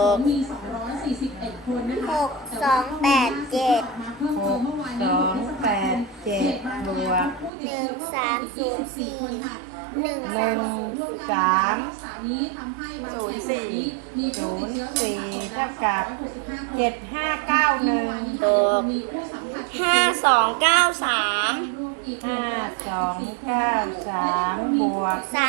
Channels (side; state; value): left; drops out; at 7.5 s